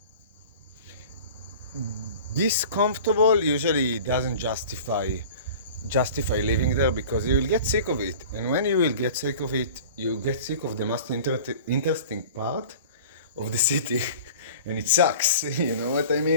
this comfortable usually doesn't justify living there because you will get sick of it. And when you will get sick of it, you get sick of the most interesting part of the city. And it sucks. You know what I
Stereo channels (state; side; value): inverted; both; correlation -0.42